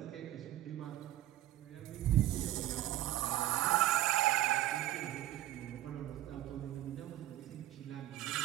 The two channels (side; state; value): left; quieter; 14.4 dB